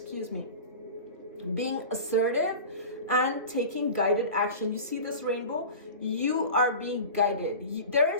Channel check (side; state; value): both; inverted; correlation -0.34